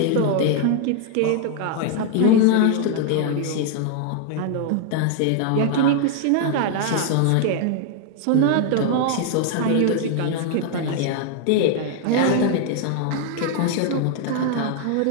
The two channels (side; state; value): both; different; correlation 0.00